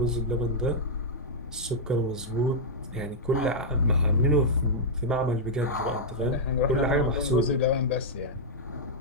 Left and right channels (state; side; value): normal; both; correlation -0.07